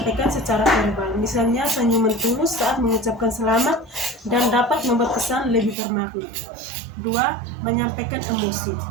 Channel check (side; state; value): left; drops out; at 5.8 s